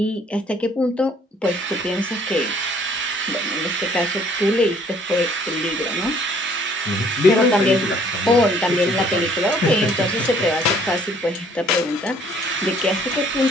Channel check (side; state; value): both; normal; correlation 0.60